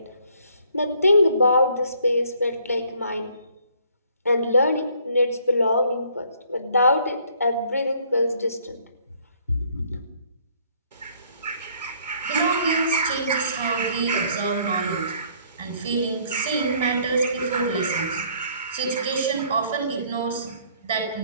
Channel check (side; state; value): both; inverted; correlation -0.62